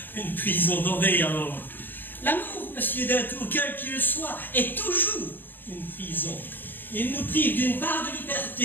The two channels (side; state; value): right; late; 0.093 ms